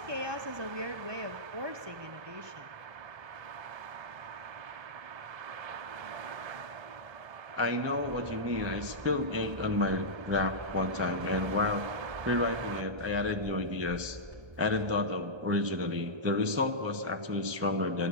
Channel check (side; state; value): left; late; 1.3 ms